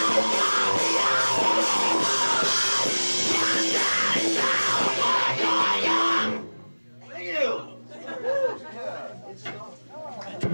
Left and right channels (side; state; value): both; inverted; correlation -1.00